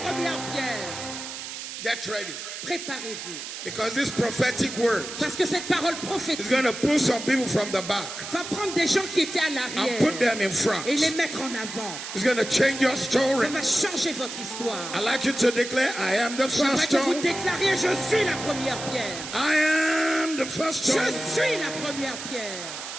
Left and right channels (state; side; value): noise; right; hiss, 9 dB below the sound